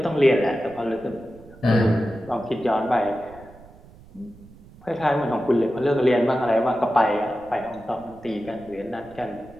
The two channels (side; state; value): right; noise; rumble, 22 dB below the sound